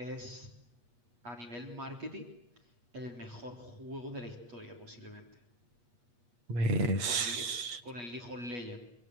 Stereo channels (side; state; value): left; late; 8.4 ms